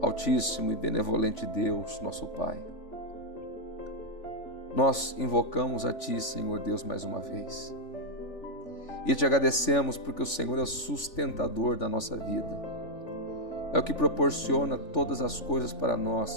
e benevolente Deus, nosso Pai, nós invocamos a Ti, Senhor Deus, mais uma vez. E te agradecemos porque o Senhor é o sustentador da nossa vida. É o que proporciona todas as coisas para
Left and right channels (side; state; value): right; late; 3.5 ms